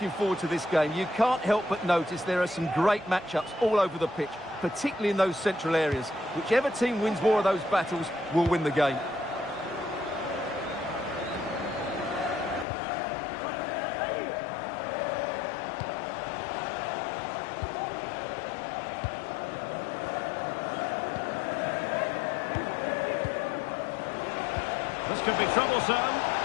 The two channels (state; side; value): drops out; right; at 12.7 s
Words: forward to this game, you can't help but notice there are some great matchups all over the pitch, particularly in those central areas. Whichever team wins more of those battles will win the game. This could be troublesome.